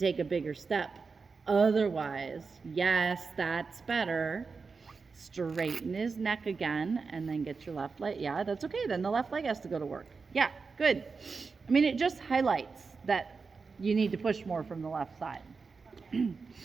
a bigger step Otherwise, yes, that's better. Straighten his neck again and then get your left leg. Yeah, that's okay. Then the left leg has to go to work. Yeah, good. I mean, it just highlights that you need to push more from the left side.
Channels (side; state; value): left; quieter; 4.7 dB